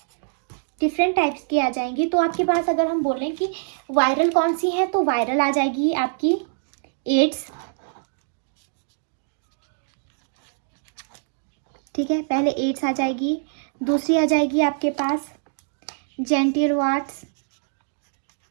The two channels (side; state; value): left; silent; digital silence